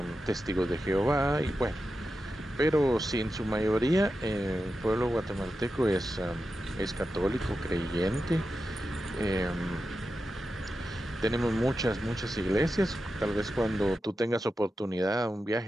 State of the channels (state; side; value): normal; both; correlation 0.90